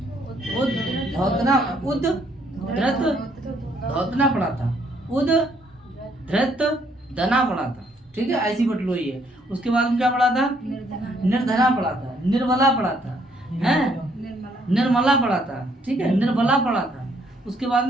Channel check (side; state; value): both; normal; correlation 0.68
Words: उद धृत धौतना पढ़ा था। उद धृत निर्धना पढ़ा था, ठीक है, ऐसी बटलोई है। उसके बाद में क्या पढ़ा था? निर्धना पढ़ा था, निर्बला पढ़ा था, हैं, निर्मला पढ़ा था, ठीक है, निर्बला पढ़ा था। उसके बाद